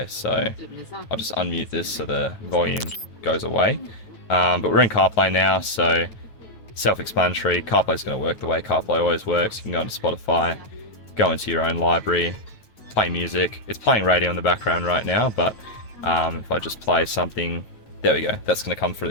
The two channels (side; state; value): right; late; 9.1 ms